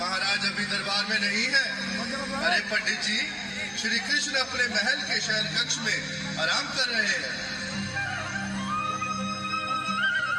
अभी दरबार में नहीं है। अरे पंडित जी, श्री कृष्ण अपने महल के शयन कक्ष में आराम कर रहे हैं।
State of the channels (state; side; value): identical; both; correlation 1.00